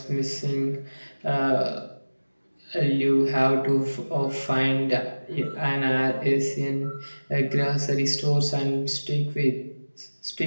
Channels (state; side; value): inverted; both; correlation -1.00